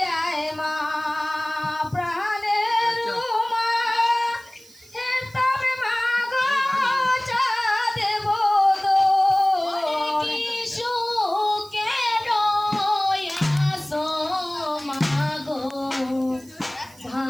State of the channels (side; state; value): right; noise; hiss, 25 dB below the sound